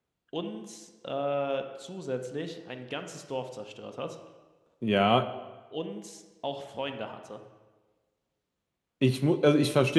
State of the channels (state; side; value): identical; both; correlation 1.00